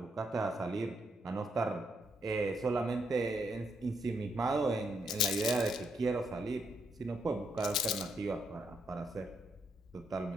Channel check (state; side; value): normal; both; correlation 0.78